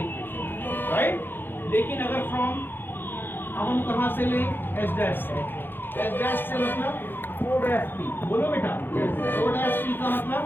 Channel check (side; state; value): right; late; 0.099 ms